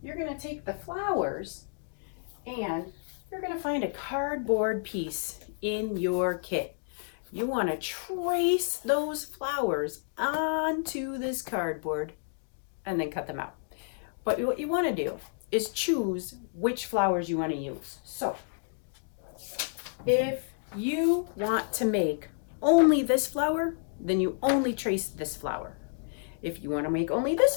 you're going to take the flowers and you're going to find a cardboard piece in your kit. You want to trace those flowers onto this cardboard and then cut them out. But what you want to do is choose which flowers you want to use. So if you want to make only this flower, then you only trace this flower. If you want to make only this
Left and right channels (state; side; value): silent; right; digital silence